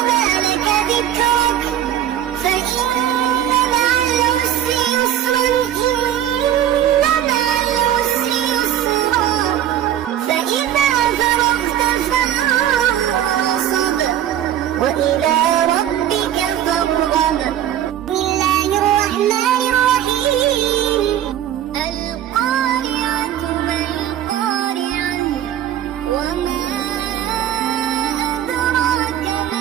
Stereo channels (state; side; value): quieter; left; 11.3 dB